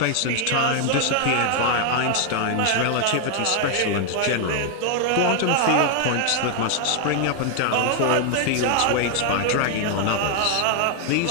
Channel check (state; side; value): different; both; correlation 0.00